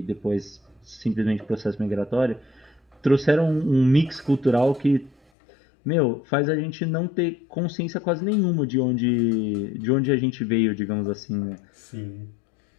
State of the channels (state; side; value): drops out; right; at 5.2 s